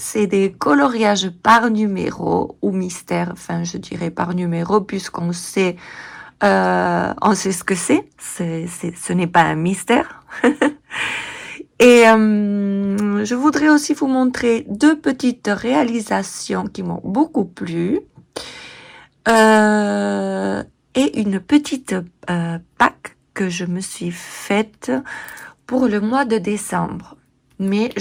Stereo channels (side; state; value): both; identical; correlation 1.00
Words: des coloriages par numéro ou mystère, enfin je dirais par numéro puisqu'on sait, on sait ce que c'est. Ce n'est pas un mystère. Et je voudrais aussi vous montrer deux petites réalisations qui m'ont beaucoup plu. Et une petite pack que je me suis faite pour le mois de décembre. Mais